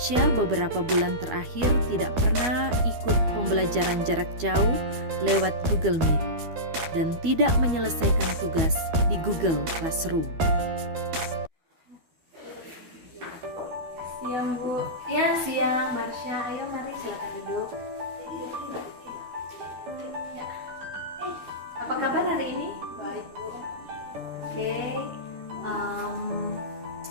beberapa bulan terakhir tidak pernah ikut pembelajaran jarak jauh lewat Google Meet dan tidak menyelesaikan tugas di Google Classroom. Siang Bu. Ya, siang Marsha. Ayo mari silakan duduk. Ya. Apa kabar hari ini? Baik Bu. Oke.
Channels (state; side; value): late; left; 12 ms